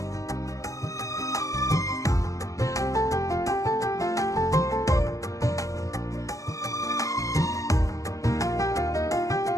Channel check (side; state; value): right; late; 0.16 ms